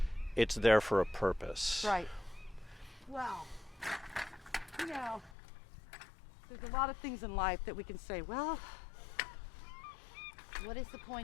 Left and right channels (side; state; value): right; drops out; at 5.4 s